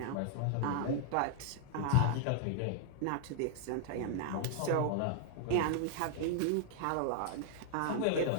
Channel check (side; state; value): both; different; correlation -0.01